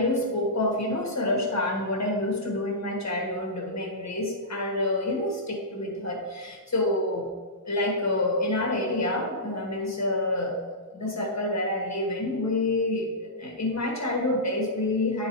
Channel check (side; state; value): both; normal; correlation -0.16